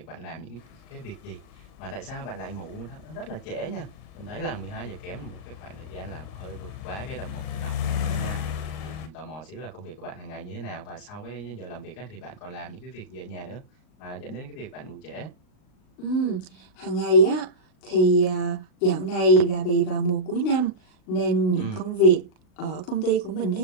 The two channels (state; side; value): late; right; 38 ms